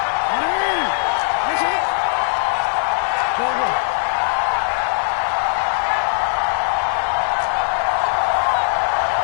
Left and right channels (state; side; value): silent; right; 66 dB below the other